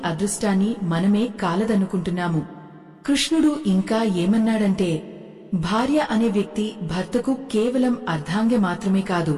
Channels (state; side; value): identical; both; correlation 1.00